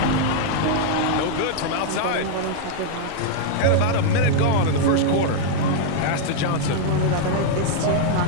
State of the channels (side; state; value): both; different; correlation 0.00